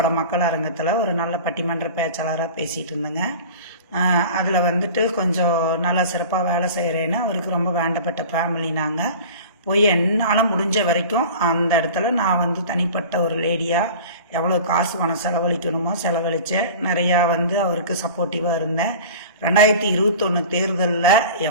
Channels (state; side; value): inverted; both; correlation -0.38